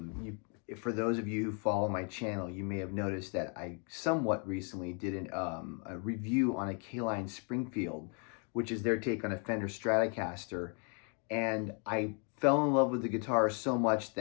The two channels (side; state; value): right; quieter; 38.2 dB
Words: For those of you who follow my channel, you may have noticed that I somewhat recently did a review on a K-Line Springfield, which is their take on a Fender Stratocaster. And I fell in love with the guitar so much